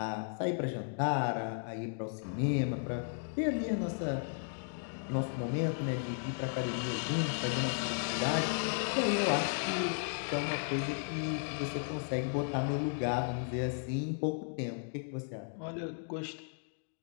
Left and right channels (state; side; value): silent; right; digital silence